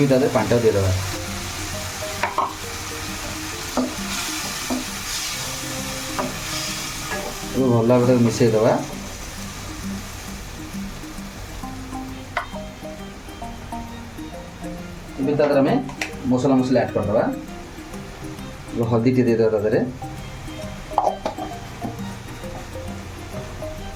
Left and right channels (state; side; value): identical; both; correlation 1.00